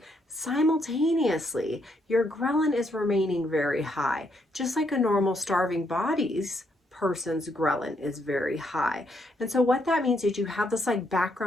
simultaneously, your ghrelin is remaining very high, just like a normal starving person's ghrelin is very high. And so what that means is you have this like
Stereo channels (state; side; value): normal; both; correlation 0.75